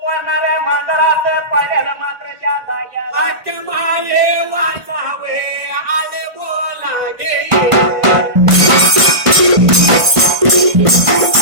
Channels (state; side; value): late; left; 1.5 ms